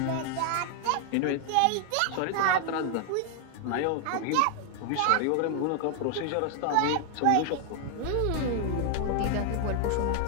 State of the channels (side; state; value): both; different; correlation 0.00